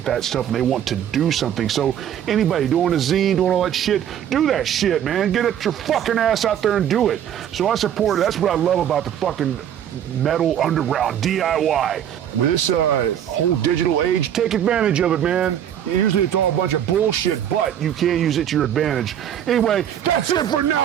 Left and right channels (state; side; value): quieter; left; 9.9 dB